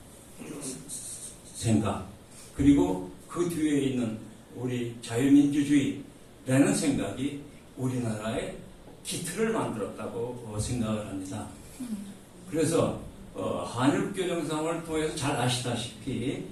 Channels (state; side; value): identical; both; correlation 1.00